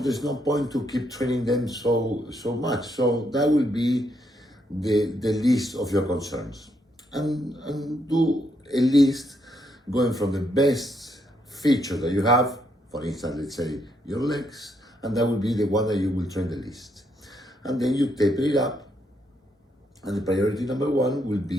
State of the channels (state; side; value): normal; both; correlation 0.76